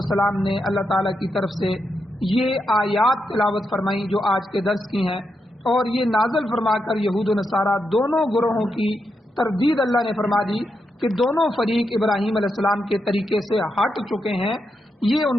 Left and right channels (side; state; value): both; normal; correlation 0.84